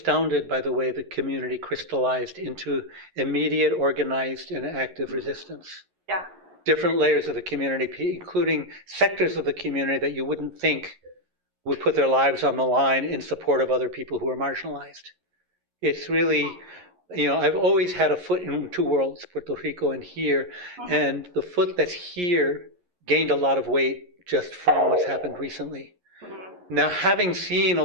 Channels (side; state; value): left; late; 11 ms